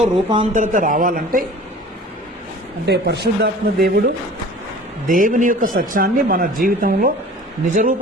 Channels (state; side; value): normal; both; correlation 0.43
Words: రూపాంతరత రావాలంటే అంటే పరిశుద్ధాత్మ దేవుడు దేవుని యొక్క సత్యాన్ని మన జీవితంలో